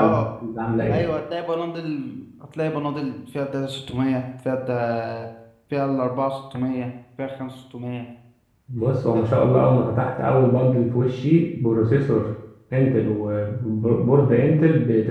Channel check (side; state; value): both; identical; correlation 1.00